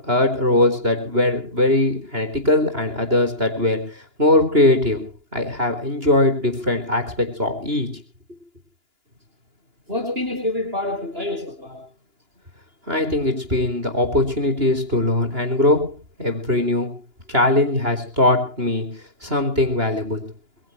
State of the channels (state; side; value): late; left; 2.9 ms